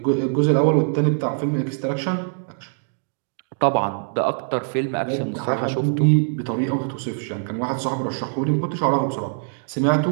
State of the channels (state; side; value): silent; left; digital silence